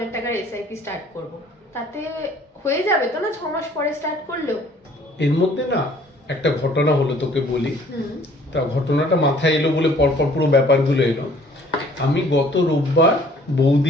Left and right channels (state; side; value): normal; both; correlation 0.56